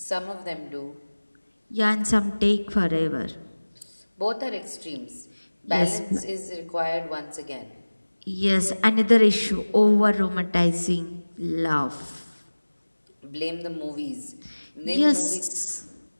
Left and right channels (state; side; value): inverted; both; correlation -1.00